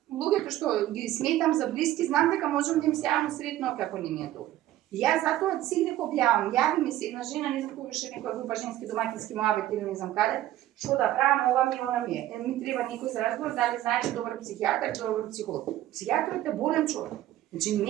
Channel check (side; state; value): left; quieter; 14.0 dB